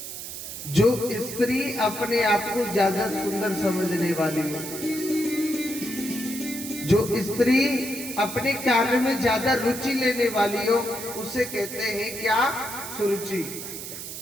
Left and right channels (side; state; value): right; noise; hiss, 9 dB below the sound